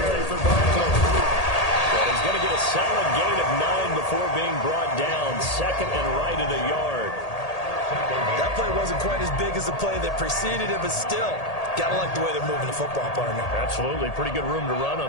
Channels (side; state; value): right; late; 1.8 ms